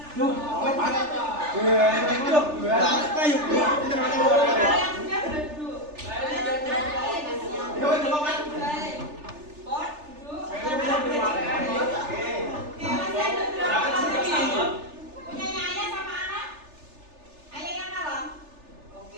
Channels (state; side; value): late; left; 3.4 ms